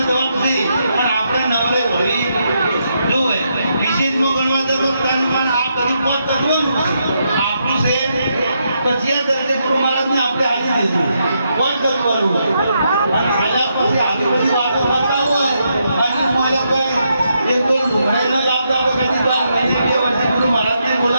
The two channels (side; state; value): both; inverted; correlation -0.80